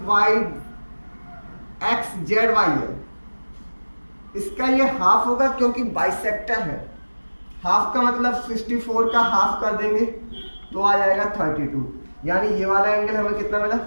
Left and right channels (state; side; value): inverted; both; correlation -1.00